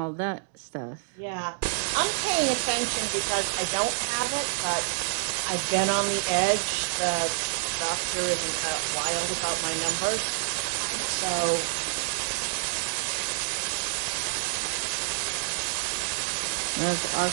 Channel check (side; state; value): left; silent; digital silence